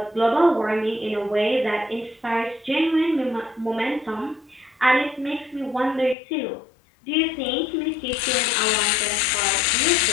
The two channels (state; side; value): drops out; right; at 6.2 s